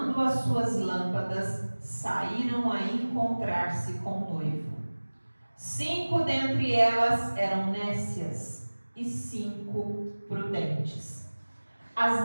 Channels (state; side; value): inverted; both; correlation -1.00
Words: as suas lâmpadas, saíram a encontrar-se com o noivo. 5 dentre elas eram nécias e 5 prudentes.